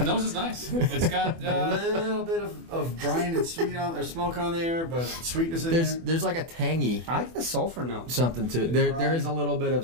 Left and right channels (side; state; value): left; late; 24 ms